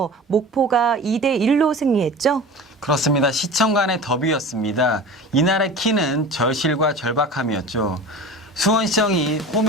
목포가 2대1로 승리했죠. 그렇습니다. 시청 간의 더비였습니다. 이날의 키는 절실과 절박함이었죠. 수원시청이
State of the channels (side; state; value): both; normal; correlation 0.35